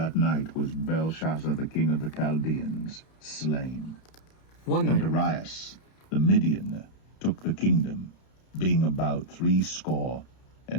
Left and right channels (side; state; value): right; late; 31 ms